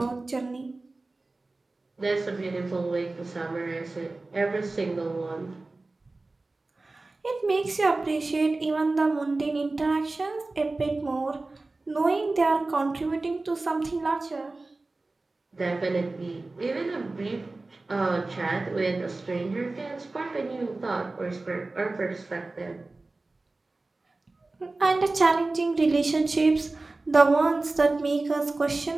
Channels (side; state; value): left; quieter; 3.3 dB